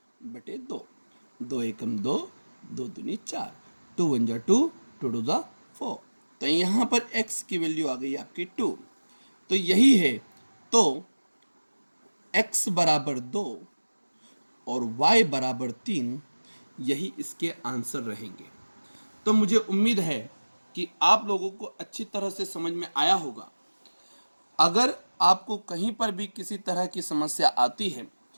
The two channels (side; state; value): both; inverted; correlation -1.00